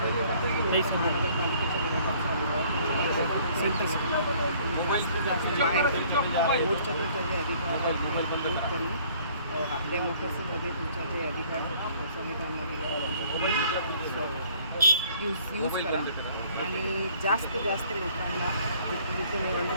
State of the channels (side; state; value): both; inverted; correlation -0.58